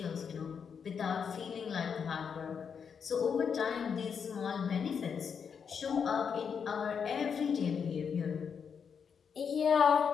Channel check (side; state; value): right; quieter; 6.7 dB